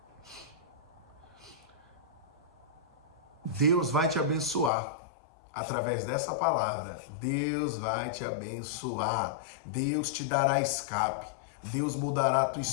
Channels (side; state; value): right; drops out; at 4.7 s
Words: Deus vai te abençoar através dessa palavra. Deus vai te abençoar. Deus te dará escape. Deus mudará a tua